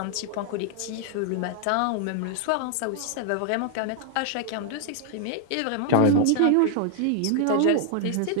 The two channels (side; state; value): both; different; correlation 0.00